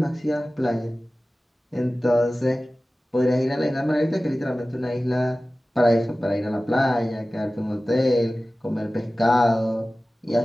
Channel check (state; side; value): normal; both; correlation 0.96